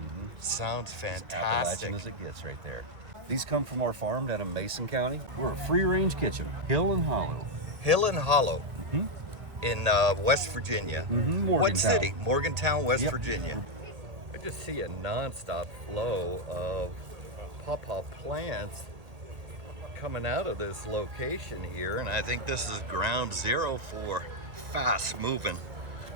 Sounds As fantastic. Appalachian as it gets right there. These come from our farm down in Mason County. We're a free-range kitchen, hill and hollow. Hill and Hollow Mm-hmm. in West Virginia. Mm-hmm. What Morgantown. city? Morgantown, West Yep. Virginia. I just see a nonstop flow of pawpaw plants coming out of this location here, and I think this is ground zero for fast-moving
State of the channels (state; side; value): late; left; 1.8 ms